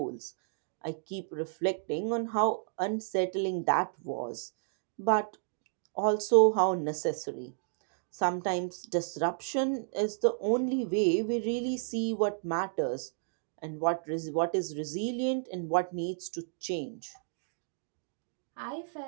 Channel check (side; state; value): left; silent; digital silence